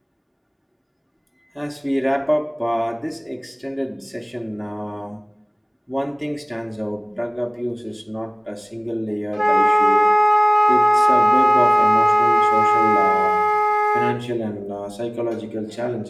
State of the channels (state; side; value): identical; both; correlation 1.00